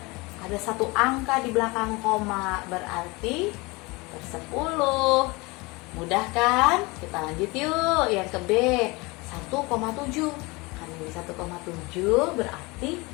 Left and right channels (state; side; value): quieter; right; 25.0 dB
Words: ada satu angka di belakang koma, berarti per 10. Mudah kan? Kita lanjut yuk, yang ke B, 1,7. Kan ini 1,7 berarti